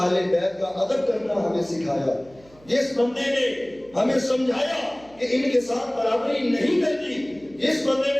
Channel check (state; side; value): noise; right; hum, 27 dB below the sound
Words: بیت کا ادب کرنا ہمیں سکھایا, جس بندے نے ہمیں سمجھایا کہ ان کے ساتھ برابری نہیں کرنی, جس بندے